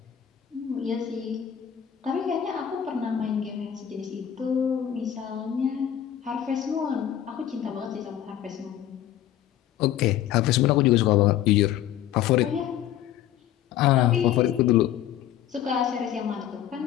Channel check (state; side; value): quieter; right; 11.0 dB